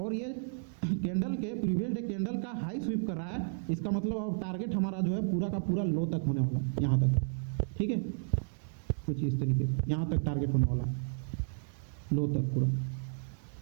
ये कैंडल के प्रीवियस डे कैंडल का हाई स्वीप कर रहा है, इसका मतलब अब टारगेट हमारा जो है पूरा का पूरा लो तक होने वाला है, यहाँ तक, ठीक है, कुछ इस तरीके से यहाँ तक टारगेट होने वाला है, लो तक पूरा।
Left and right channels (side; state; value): left; silent; digital silence